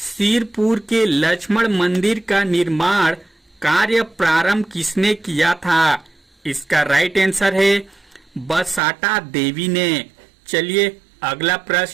के लक्ष्मण मंदिर का निर्माण कार्य प्रारंभ किसने किया था? इसका राइट आंसर है बसाटा देवी ने। चलिए अगला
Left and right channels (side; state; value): left; drops out; at 8.8 s